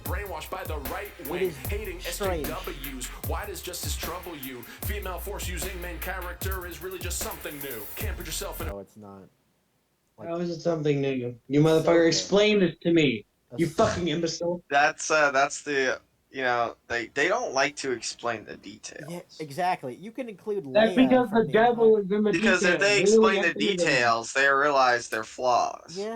by the right wing. Hating strange. SJWs. Why does justice trouble you? Female force using main character is really just something new. Can't put yourself in. No, it's not. Like, How is it something new? You motherfucker, explain this to me. You fucking imbecile. That's the, they don't like to explain the details. Yeah, exactly. You can include Leia. That's because the devil is in the details. Because if they explain the details, they realize their flaws.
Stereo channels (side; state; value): both; identical; correlation 1.00